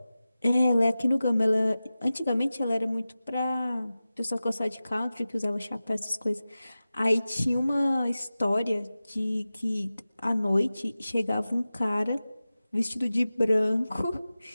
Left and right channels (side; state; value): both; inverted; correlation -0.95